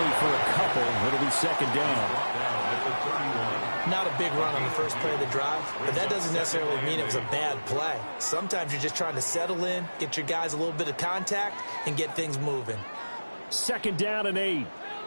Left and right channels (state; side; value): inverted; both; correlation -1.00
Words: for a couple. It'll be 2nd down. Not a big run on the first play of the drive, but that doesn't necessarily mean it was a bad play. Sometimes you're just trying to settle in, get your guys a little bit of contact, and get things moving. 2nd down and 8.